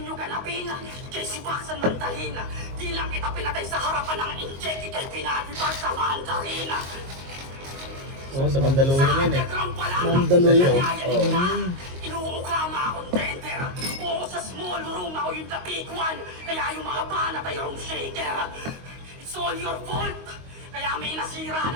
ganapin, kay si Baksan man dalhin. Di lang kita pinatay sa harapan ng inject, ikay pinatibag sa Mandarin. Oo, sa Mandalorian yun eh. underground pa lang. Mandalorian? Nangyayari na. Oo. Inuukama akong tender. Oo, sa small room ako yung the big one. Kaya yung mga banat ay room shaker. It's all your fault. Kaya may nasira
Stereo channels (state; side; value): late; left; 22 ms